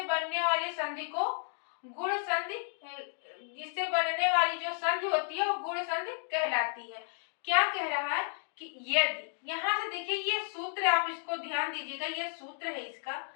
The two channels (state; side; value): silent; right; 56 dB below the other